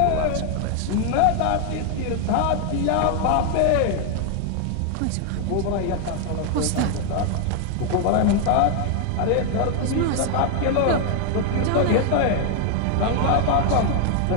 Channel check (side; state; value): both; different; correlation 0.00